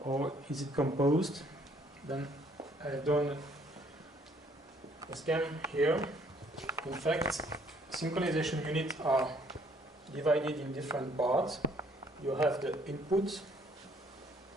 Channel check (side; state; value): both; normal; correlation 0.63